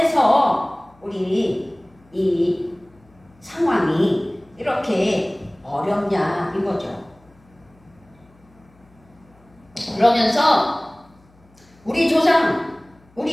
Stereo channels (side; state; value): left; noise; hum, 30 dB below the sound